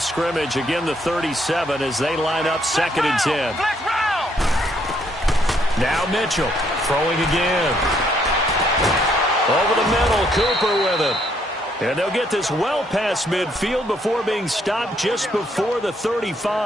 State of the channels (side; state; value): both; normal; correlation 0.70